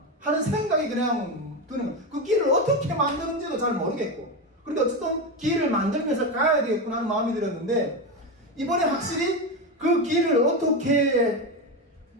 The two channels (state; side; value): normal; both; correlation 0.15